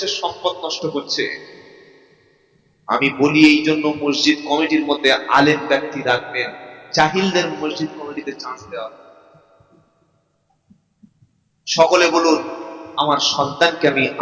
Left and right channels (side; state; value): both; identical; correlation 1.00